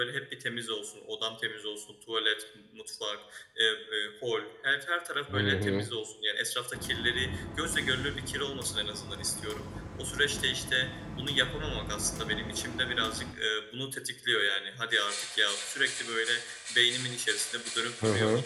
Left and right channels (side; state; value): both; identical; correlation 1.00